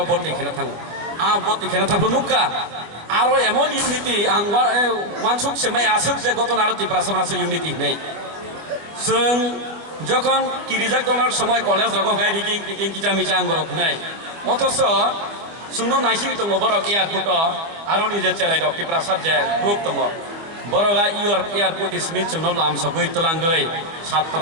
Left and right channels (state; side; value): late; left; 24 ms